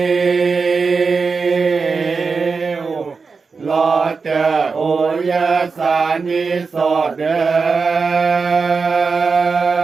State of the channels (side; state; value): left; quieter; 4.8 dB